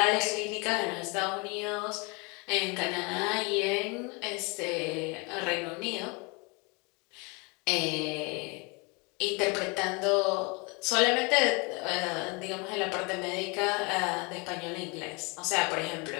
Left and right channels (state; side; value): quieter; right; 29.6 dB